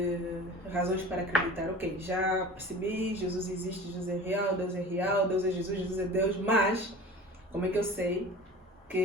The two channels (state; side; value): normal; both; correlation 0.38